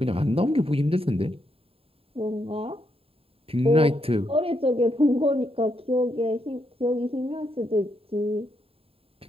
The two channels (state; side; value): late; left; 0.27 ms